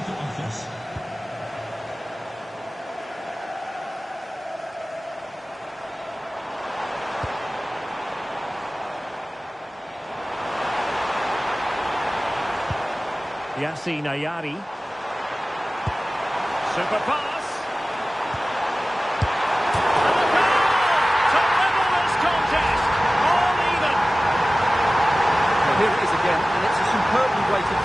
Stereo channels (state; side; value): normal; both; correlation 0.97